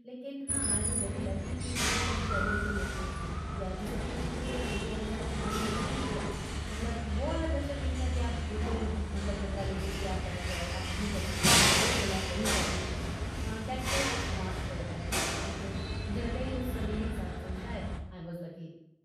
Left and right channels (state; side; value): identical; both; correlation 1.00